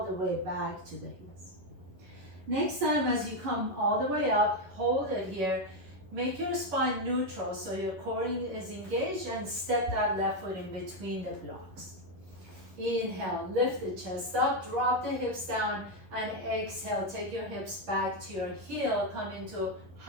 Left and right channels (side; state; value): left; late; 11 ms